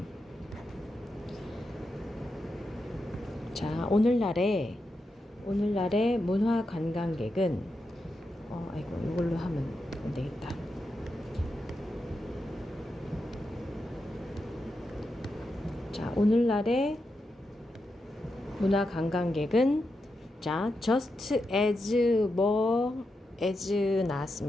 자, 오늘날의 문화 관광객은 이걸로 하면 안 되겠다. 자, 오늘날의 문화 관광객은 자, just as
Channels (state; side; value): normal; both; correlation 0.87